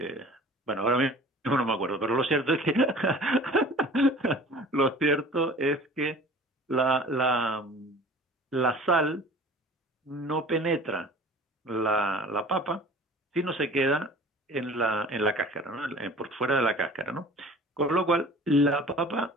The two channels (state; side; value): normal; both; correlation 0.44